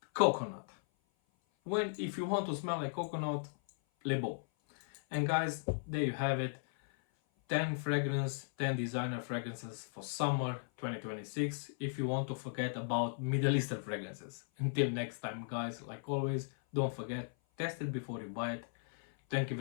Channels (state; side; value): silent; right; 53 dB below the other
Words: Coconut. When, if you want to smell like coconut, Le Beau. And guys, there you have it. 10 designer fragrances for summer 2026, if you want to forget about Middle Eastern fragrances. Until next time, guys, like always, don't forget, test it before you buy it. Thank you